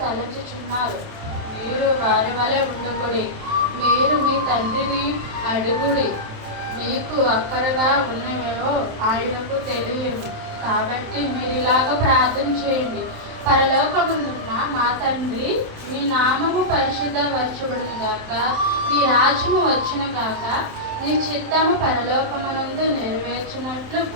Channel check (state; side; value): late; left; 27 ms